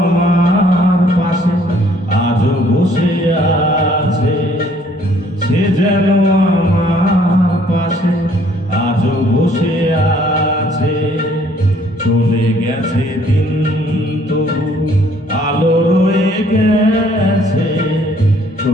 পাশে আজও বসে আছে, সে যেন আমার পাশে আজও বসে আছে। চলে গেছে দিন তবু আলো রয়ে গেছে,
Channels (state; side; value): normal; both; correlation 0.61